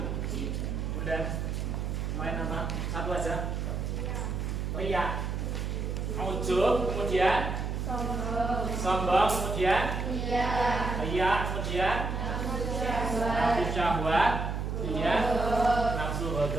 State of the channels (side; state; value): right; noise; hum, 2 dB below the sound